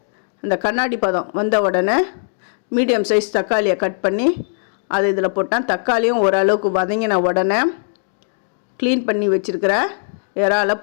அந்த கண்ணாடி பதம் வந்த உடனே மீடியம் சைஸ் தக்காளியை கட் பண்ணி அது இதில் போட்டேன். தக்காளியும் ஓரளவுக்கு வதங்கின உடனே க்ளீன் பண்ணி வச்சுருக்கிற இறாலை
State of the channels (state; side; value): silent; right; digital silence